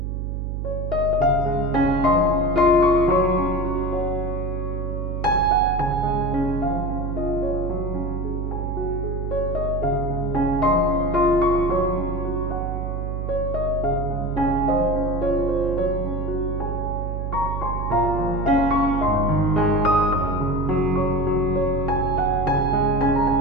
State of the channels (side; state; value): right; noise; hum, 3 dB below the sound